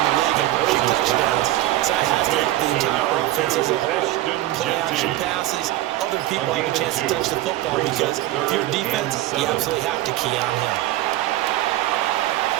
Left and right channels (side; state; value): left; quieter; 15.6 dB